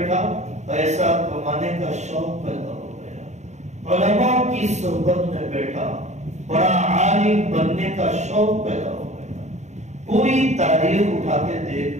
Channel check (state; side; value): late; left; 0.34 ms